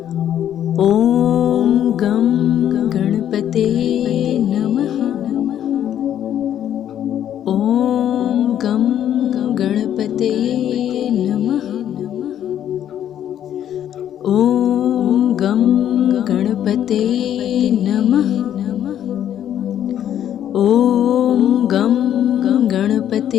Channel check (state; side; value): quieter; right; 10.5 dB